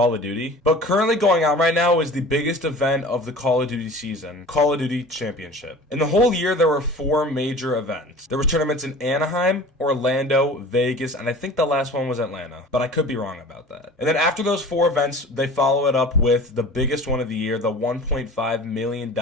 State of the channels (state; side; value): normal; both; correlation 0.41